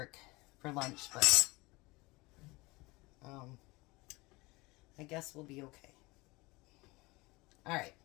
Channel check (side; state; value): right; quieter; 23.3 dB